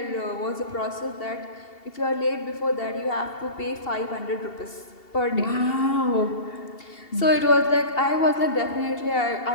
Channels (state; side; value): late; right; 2.7 ms